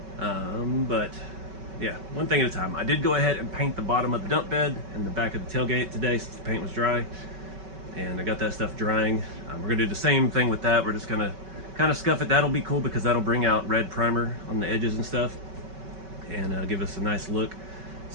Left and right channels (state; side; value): late; left; 5.2 ms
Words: but yeah, one thing at a time. I did go ahead and paint the bottom of the dump bed and the back of the tailgate today since the paint was dry, and I got that stuff drying. We're going to do the same thing with that. We're just going to kind of scuff it. That'll be cool because that'll bring out red primer on the edges and stuff, and give us a nice look.